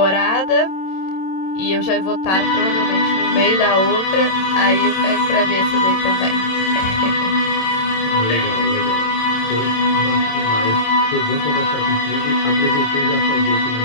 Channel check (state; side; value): late; right; 27 ms